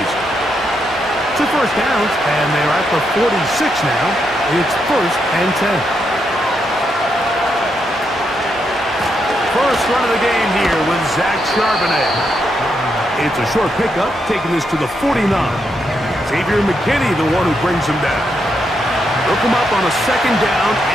2 first downs, and they're at the 46 now. It's 1st and 10. First run of the game here with Zach Charbonnet. It's a short pickup, taking this to the 49. Xavier McKinney, the one who brings him down. Look him up on a 2nd down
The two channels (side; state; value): both; normal; correlation 0.81